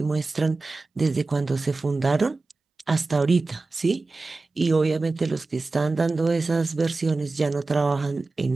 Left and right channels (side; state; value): left; quieter; 3.6 dB